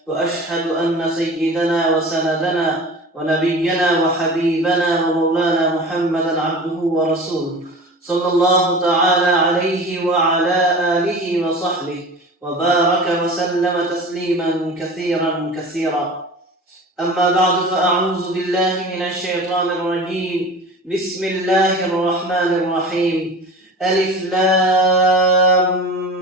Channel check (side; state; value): both; normal; correlation 0.36